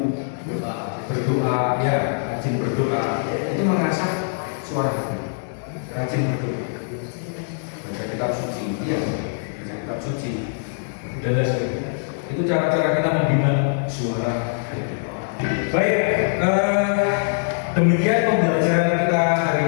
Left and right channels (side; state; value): right; silent; digital silence